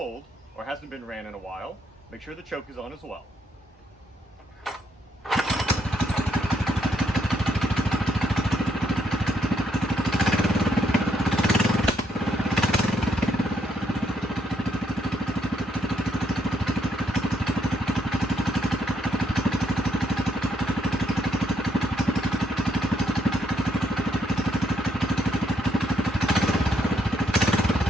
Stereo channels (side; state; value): both; normal; correlation 0.73